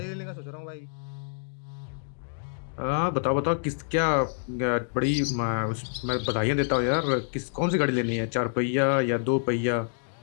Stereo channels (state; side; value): silent; right; digital silence